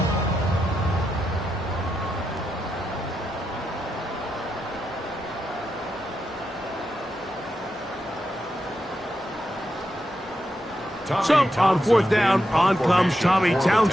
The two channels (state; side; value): normal; both; correlation 0.86